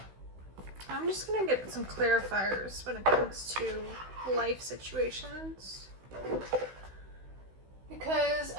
I'm just going to get some clarifiers when it comes to life situations, because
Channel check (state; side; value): late; left; 16 ms